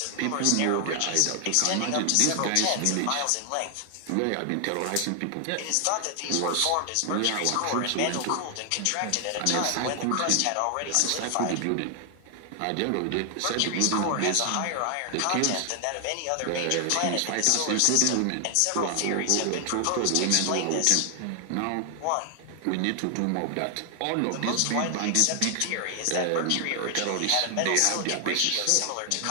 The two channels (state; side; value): different; both; correlation 0.00